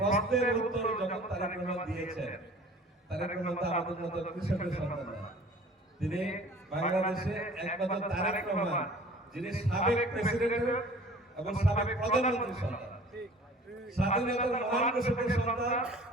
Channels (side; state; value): both; normal; correlation 0.47